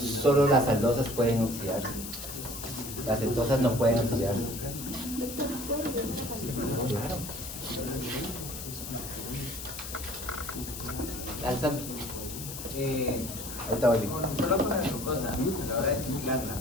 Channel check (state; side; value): noise; left; hiss, 9 dB below the sound